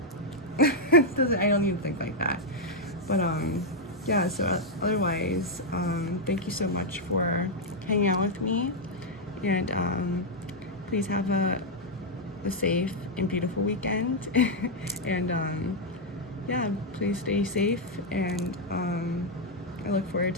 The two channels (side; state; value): both; normal; correlation -0.02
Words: I don't even think like that. But yeah, so otherwise, thank you so much for hanging out with me, and please have a safe and beautiful weekend. And yeah, please stay safe, and I look forward